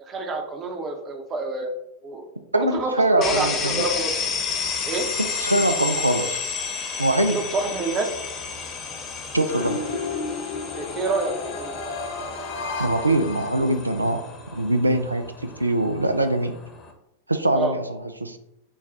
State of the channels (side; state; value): both; inverted; correlation -0.38